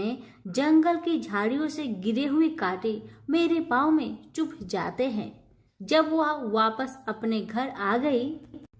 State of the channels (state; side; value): identical; both; correlation 1.00